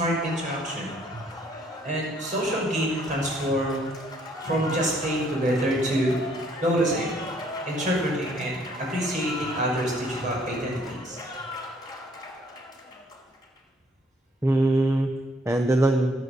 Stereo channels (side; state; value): both; normal; correlation 0.65